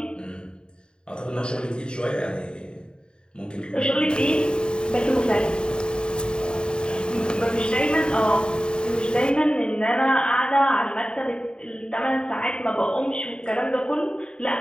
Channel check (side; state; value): right; late; 0.049 ms